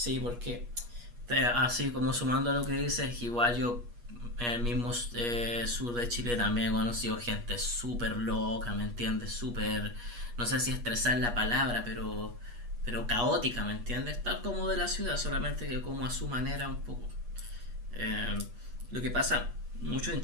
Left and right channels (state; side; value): late; left; 8.4 ms